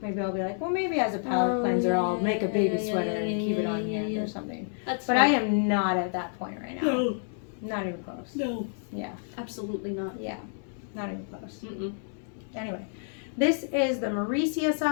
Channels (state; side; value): silent; right; 59 dB below the other